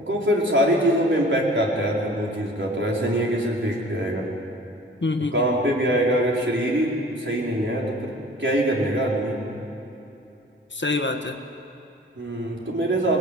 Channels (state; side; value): normal; both; correlation 0.46